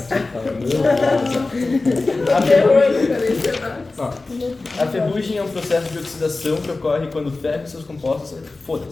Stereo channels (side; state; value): right; quieter; 3.4 dB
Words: Ó, a ferrugem é um processo de oxidação que ocorre quando o ferro e seus compostos